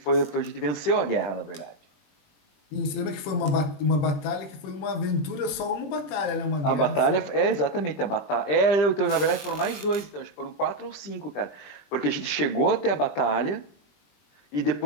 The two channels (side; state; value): right; late; 20 ms